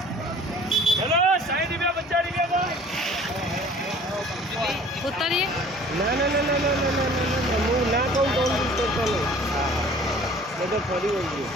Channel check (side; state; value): both; normal; correlation 0.49